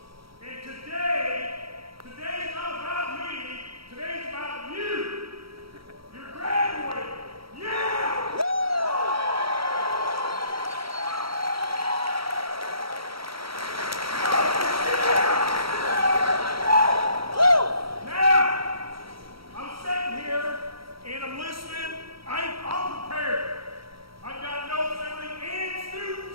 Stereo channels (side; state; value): left; late; 0.75 ms